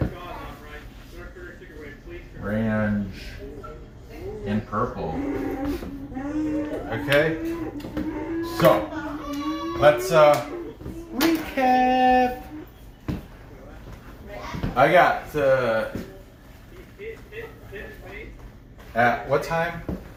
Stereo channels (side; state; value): both; identical; correlation 1.00